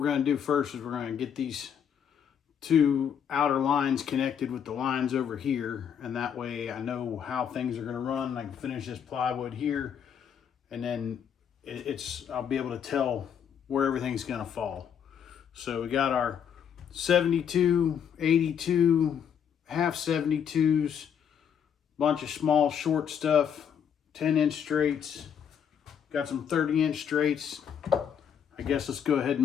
going to do first is we're going to get these two outer lines connected with the lines over here, and that way I know how things are going to run. I can finish this plywood here, and then I'll be able to tell where everything's going to fall. So we got our 72, 82, half 72s, bunch of small short stuff, 10-inch straights, got some 30-inch straights. I guess let's go ahead and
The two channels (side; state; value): right; quieter; 8.2 dB